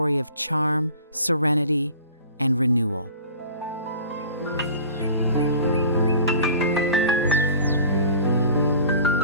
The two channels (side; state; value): both; inverted; correlation -0.43